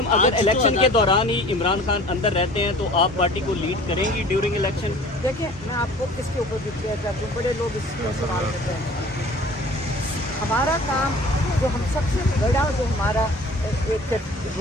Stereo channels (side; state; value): both; normal; correlation 0.46